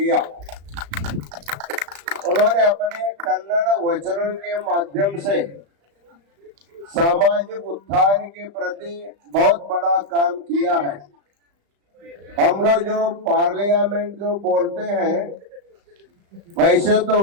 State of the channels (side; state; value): left; late; 35 ms